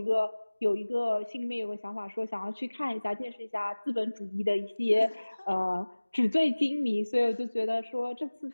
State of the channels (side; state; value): both; inverted; correlation -1.00